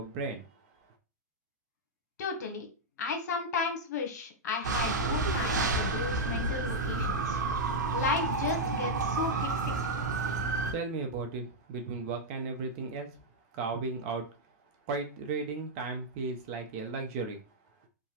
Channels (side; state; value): both; normal; correlation -0.04